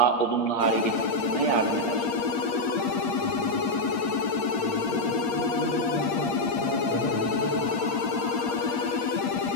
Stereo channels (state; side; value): late; right; 8.6 ms